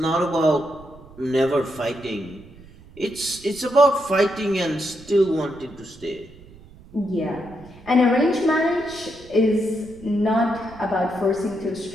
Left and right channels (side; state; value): right; noise; rumble, 21 dB below the sound